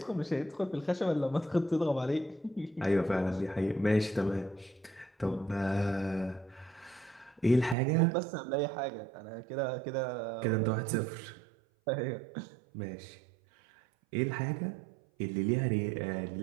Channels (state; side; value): drops out; left; at 7.8 s